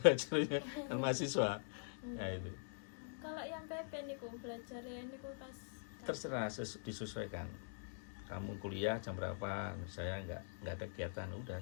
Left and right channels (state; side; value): silent; right; digital silence